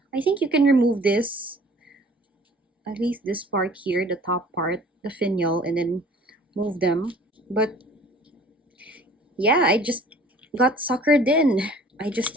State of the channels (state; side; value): normal; both; correlation 0.51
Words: I think you can remove this, at least this part here, the top part, the finial, and then move them. But yeah, I just got suckered in. I just